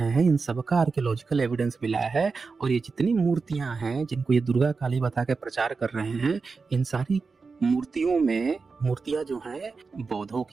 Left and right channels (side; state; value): left; quieter; 4.6 dB